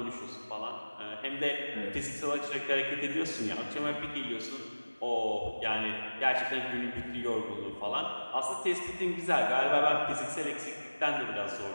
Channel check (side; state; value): both; inverted; correlation -1.00